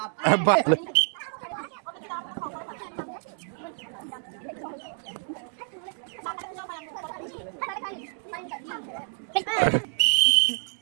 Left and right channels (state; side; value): silent; left; 59 dB below the other